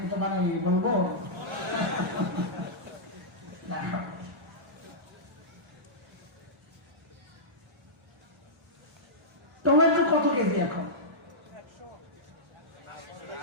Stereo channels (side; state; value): both; normal; correlation -0.12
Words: বলবো টমেটো কত কেজি এখন?